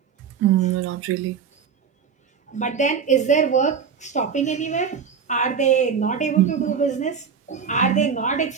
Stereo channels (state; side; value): quieter; left; 6.6 dB